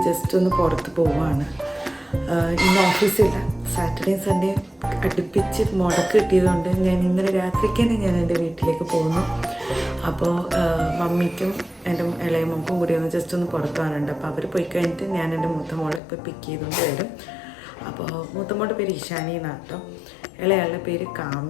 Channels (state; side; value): drops out; right; at 16.0 s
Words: ജസ്റ്റ് ഒന്ന് പുറത്ത് പോവുകയാണ്. ഇന്ന് ഓഫീസില്ല, സാറ്റർഡേ സൺഡേ അടുപ്പിച്ച് മുടക്ക് കിട്ടിയതുകൊണ്ട് ഞാൻ ഇന്നലെ രാത്രിക്ക് തന്നെ ഞാൻ എൻ്റെ വീട്ടിലേക്ക് പോകുന്നു. അപ്പോൾ മമ്മിക്കും എൻ്റെ ഇളയ മോൾക്കും കൂടി ഒന്ന് ജസ്റ്റ് ഒന്ന് പുറത്ത് പോകാനുണ്ട്. അപ്പോൾ അവർ പോയി കഴിഞ്ഞിട്ട് ഞാൻ എൻ്റെ മൂത്ത മോളെ ഇപ്പോൾ പിക്ക് ചെയ്തുകൊണ്ട് വരും. അപ്പോൾ മൂത്ത മോളുടെ പേര് ഇഷാനി എന്നാണ് കേട്ടോ, ഇളയാളുടെ പേര്